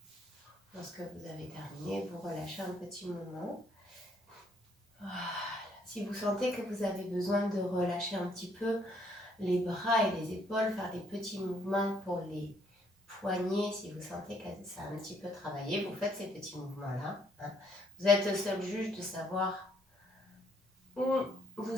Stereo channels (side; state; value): both; normal; correlation 0.68